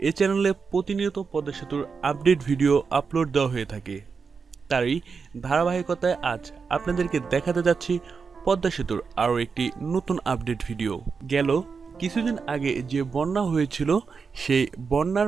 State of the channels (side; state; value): left; quieter; 5.4 dB